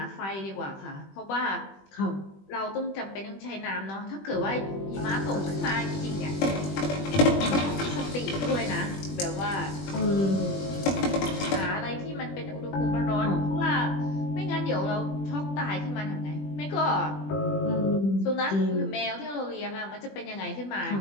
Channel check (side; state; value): right; late; 20 ms